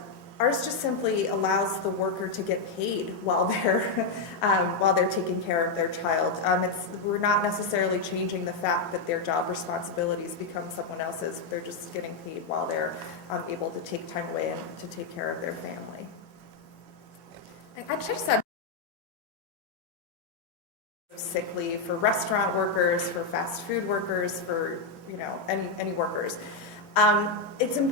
just simply allows the worker to get paid while they're taking care of their child. We're not necessarily changing the fact that their job responsibilities become someone else's. They're just getting paid while they're able to take time away and to take care of their family. I just said sick leave for restaurant workers, for fast food workers, for any workers. It's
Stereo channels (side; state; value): right; quieter; 3.9 dB